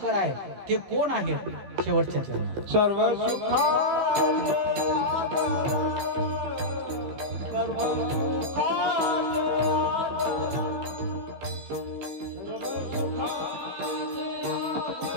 आहे ते कोण आहेत? शेवटच्या चरणात सर्व सुखा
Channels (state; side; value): late; left; 15 ms